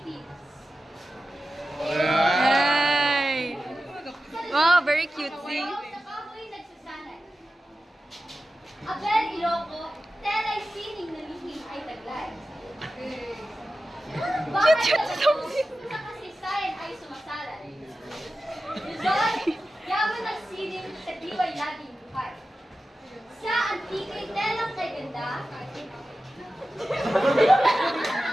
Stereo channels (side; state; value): both; normal; correlation 0.94